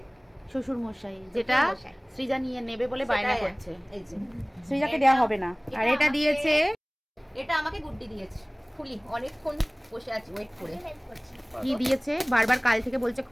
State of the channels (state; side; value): identical; both; correlation 1.00